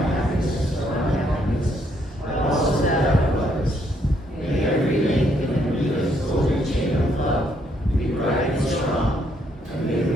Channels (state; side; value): normal; both; correlation 0.72